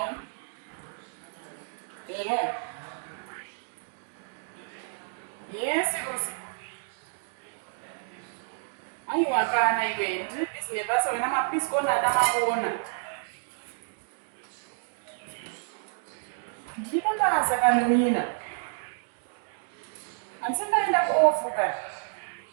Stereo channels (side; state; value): left; silent; digital silence